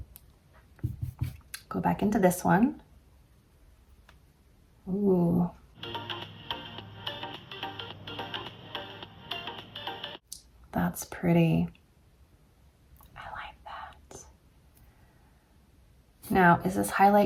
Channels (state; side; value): identical; both; correlation 1.00